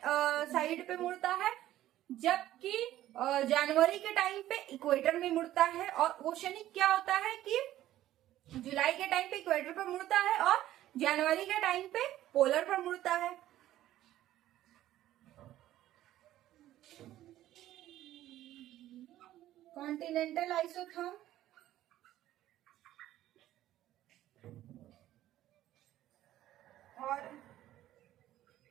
साइड पे मुड़ता है, जबकि जनवरी के टाइम पे इक्वेटर में मुड़ता है। और ओशनिक क्या होता है कि जुलाई के टाइम पे इक्वेटर पर मुड़ता है और जनवरी के टाइम पे पोलर पर मुड़ता है। कॉन्टिनेंटल आइसोथर्म और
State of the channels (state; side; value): quieter; left; 13.7 dB